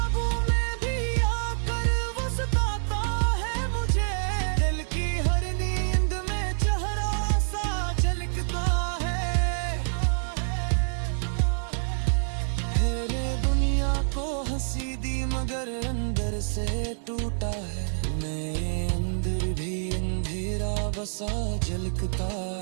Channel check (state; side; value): silent; left; digital silence